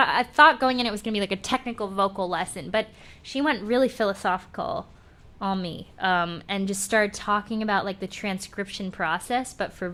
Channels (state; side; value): identical; both; correlation 1.00